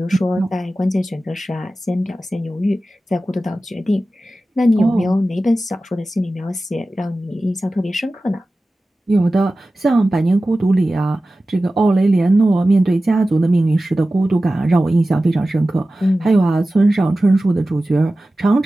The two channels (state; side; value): normal; both; correlation 0.95